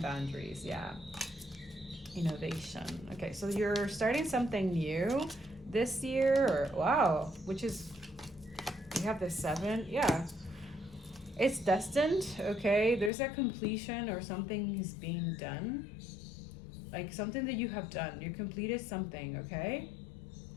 Yeah. Innovation. Okay, so you're starting something new this year, or wow, which is, you have the 7. Yeah, it's destined. Okay, there's a completion or something is being done, like something that you have done. You completed something. Okay,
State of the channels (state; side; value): drops out; right; at 13.1 s